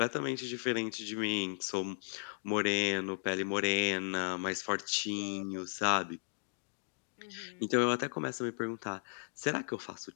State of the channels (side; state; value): right; silent; digital silence